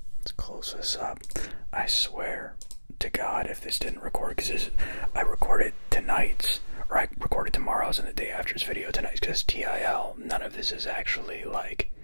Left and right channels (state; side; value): inverted; both; correlation -1.00